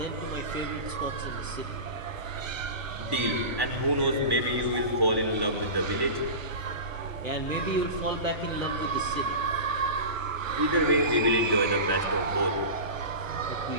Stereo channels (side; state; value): left; late; 1.1 ms